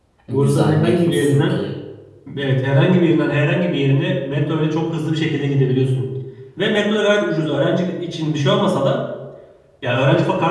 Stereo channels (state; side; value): identical; both; correlation 1.00